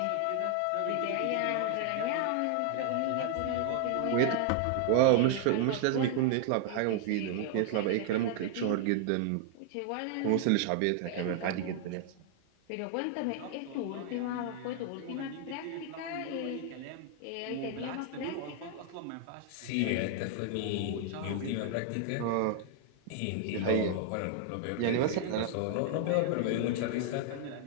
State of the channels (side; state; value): both; different; correlation 0.00